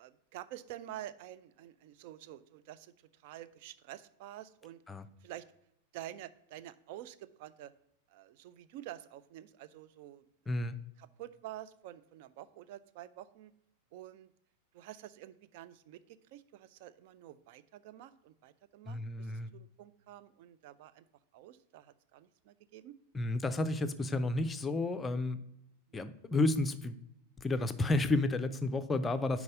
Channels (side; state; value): both; normal; correlation 0.69